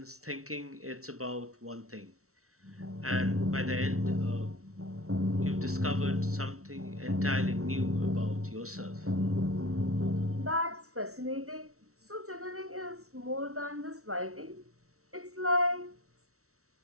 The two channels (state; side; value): late; left; 0.63 ms